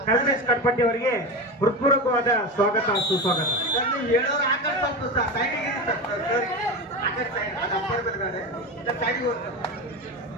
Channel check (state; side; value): normal; both; correlation 0.22